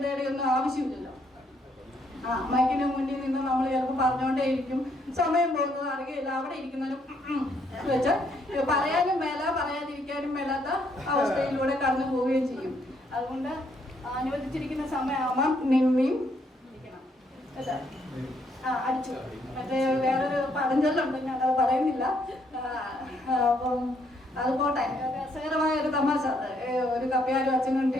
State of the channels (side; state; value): both; normal; correlation 0.71